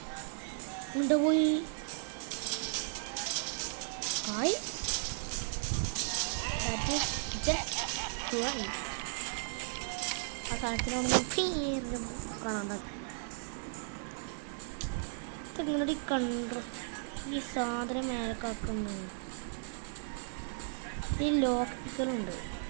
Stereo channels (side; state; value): left; silent; 54 dB below the other